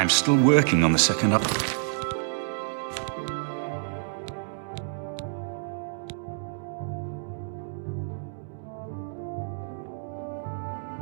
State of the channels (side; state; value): left; silent; digital silence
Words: still working on the second up...